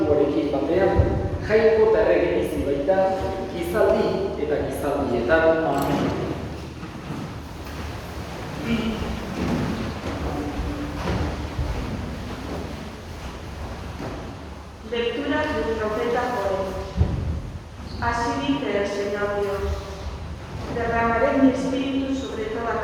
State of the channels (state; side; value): identical; both; correlation 1.00